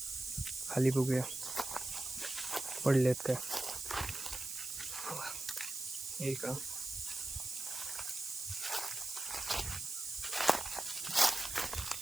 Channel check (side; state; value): right; noise; hiss, 6 dB below the sound